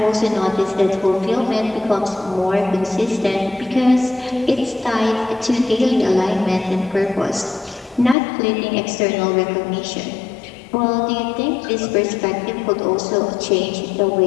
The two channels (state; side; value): drops out; right; at 8.2 s